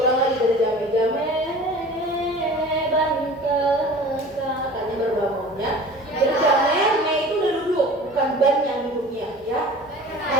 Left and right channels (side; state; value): both; normal; correlation 0.42